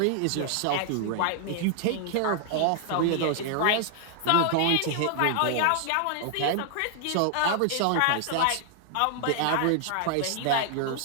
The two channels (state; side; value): different; both; correlation 0.00